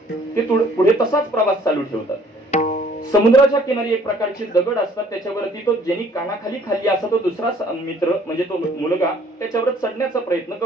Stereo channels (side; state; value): both; normal; correlation 0.58